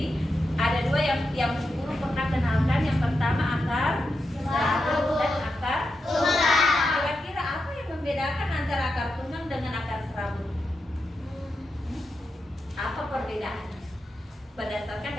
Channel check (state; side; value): normal; both; correlation 0.87